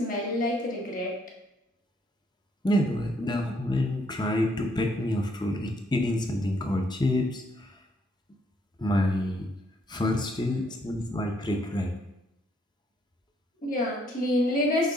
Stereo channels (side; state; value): both; normal; correlation 0.70